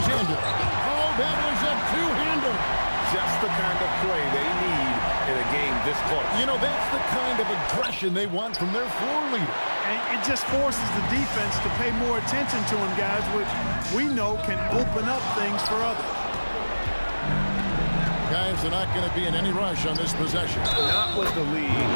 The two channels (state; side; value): inverted; both; correlation -1.00